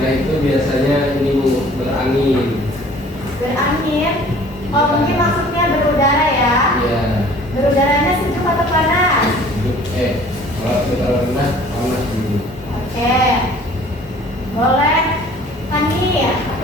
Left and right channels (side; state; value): both; normal; correlation 0.51